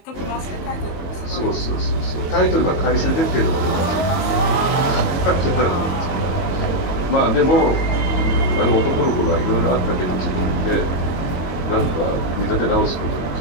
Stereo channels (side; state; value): right; late; 22 ms